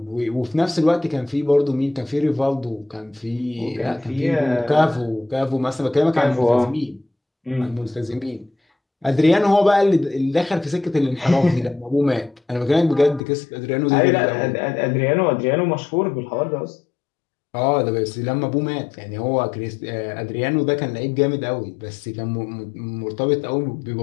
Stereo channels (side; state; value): right; drops out; at 13.2 s